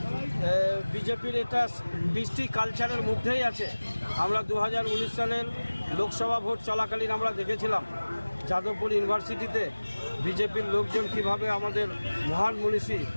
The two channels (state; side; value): inverted; both; correlation -1.00